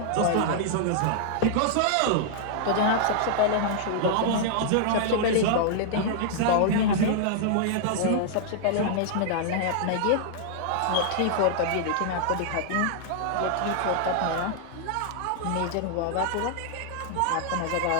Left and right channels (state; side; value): different; both; correlation -0.01